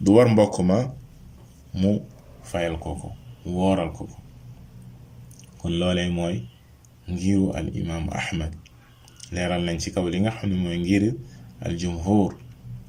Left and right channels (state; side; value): identical; both; correlation 1.00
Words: war mbokk ma mu fayal ko wooral ko. kon loolee mooy ngiru al imaamu Ahmad, leeral nañ ci kaw li nga xam ne mooy ngir al jumhur